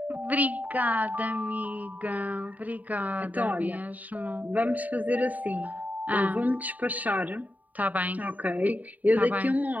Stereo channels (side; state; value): left; late; 0.075 ms